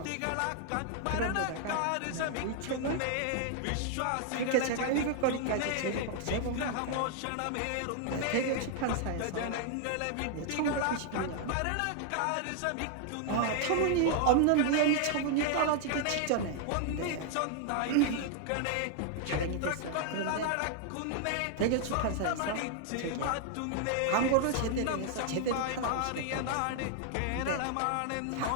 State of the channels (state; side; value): different; both; correlation 0.00